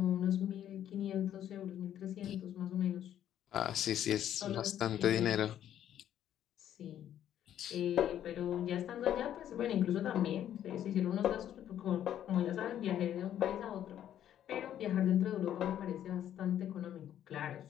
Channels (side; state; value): right; quieter; 10.8 dB